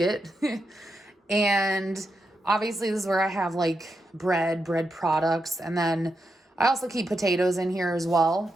And obviously this is where I have like bread products. And then I also keep potatoes in here as well.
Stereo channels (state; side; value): normal; both; correlation 0.85